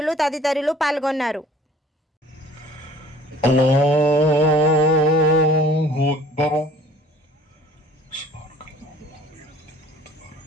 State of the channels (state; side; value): normal; both; correlation 0.51